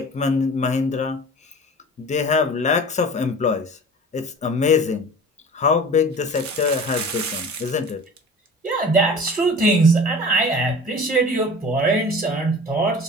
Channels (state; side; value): normal; both; correlation 0.40